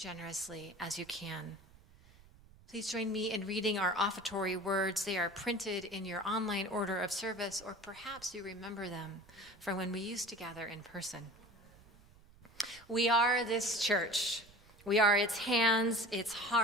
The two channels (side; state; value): right; noise; rumble, 25 dB below the sound